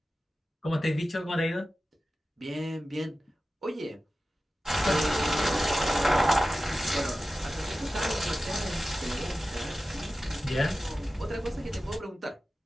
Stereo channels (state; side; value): normal; both; correlation 0.94